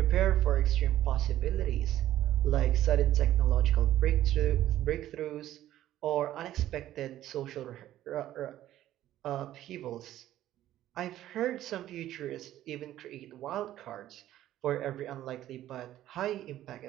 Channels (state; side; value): quieter; left; 13.2 dB